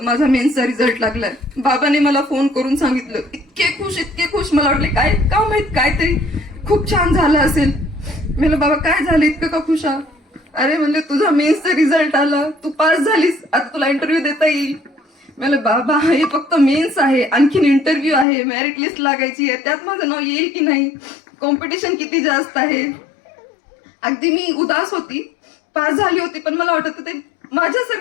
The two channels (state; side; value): drops out; right; at 18.2 s